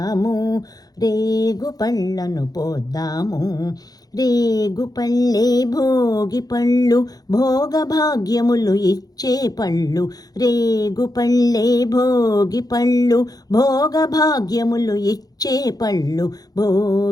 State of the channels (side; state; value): right; late; 0.19 ms